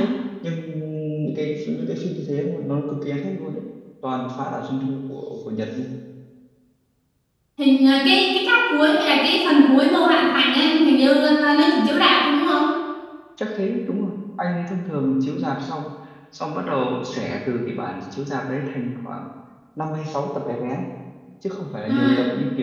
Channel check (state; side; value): identical; both; correlation 1.00